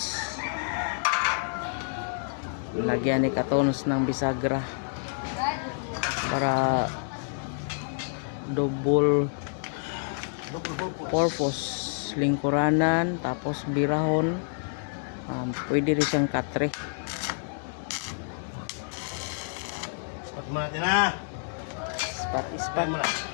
Lagyan ni katons ng bisagra para double purpose. Lingkuranan tapos birahon. Pwede rin siyang katre. Ispat mo natin, ha? Ispat mo na.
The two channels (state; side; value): silent; right; digital silence